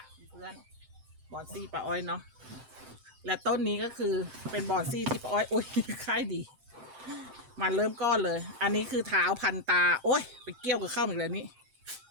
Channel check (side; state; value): left; late; 7.7 ms